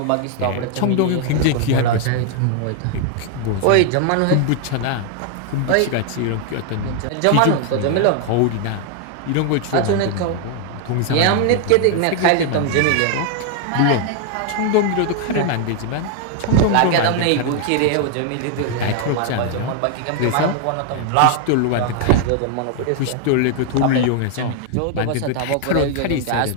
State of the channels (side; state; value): both; different; correlation 0.00